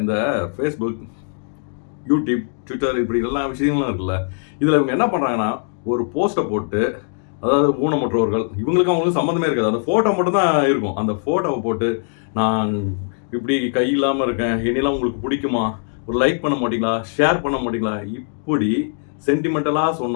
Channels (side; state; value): right; silent; digital silence